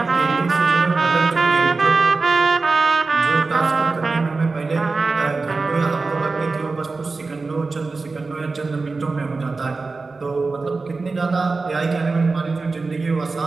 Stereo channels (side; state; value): left; quieter; 3.9 dB